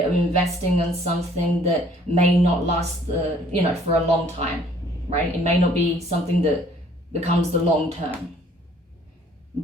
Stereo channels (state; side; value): normal; both; correlation 0.58